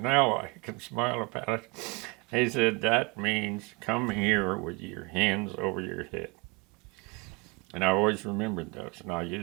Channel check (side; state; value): left; quieter; 28.2 dB